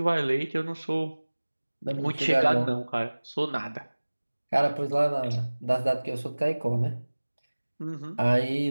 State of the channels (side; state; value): both; inverted; correlation -1.00